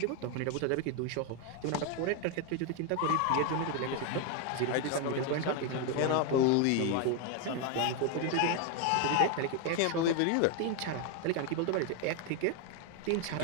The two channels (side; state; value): both; different; correlation 0.01